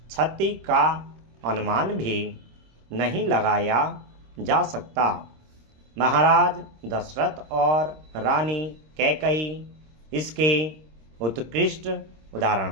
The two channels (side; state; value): left; late; 26 ms